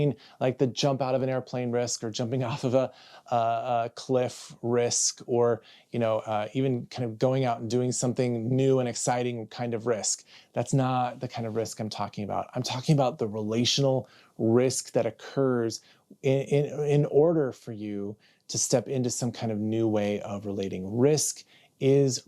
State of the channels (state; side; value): identical; both; correlation 1.00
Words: like the jump out of an airplane risk or jumping off of a cliff risk, or even kind of going out and doing something new and exciting kind of risk. That's not the kind of risk I'm talking about. I'm talking about the relational risk that occurs in order for you to step into some kind of new way of relating. Risk is